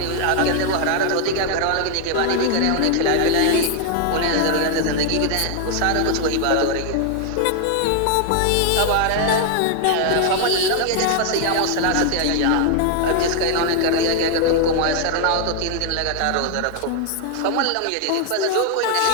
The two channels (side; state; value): both; different; correlation 0.00